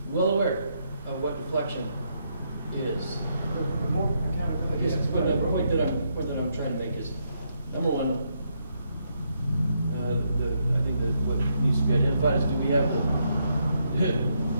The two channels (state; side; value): inverted; both; correlation -0.77